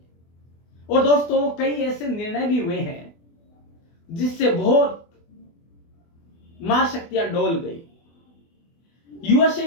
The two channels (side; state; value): right; late; 24 ms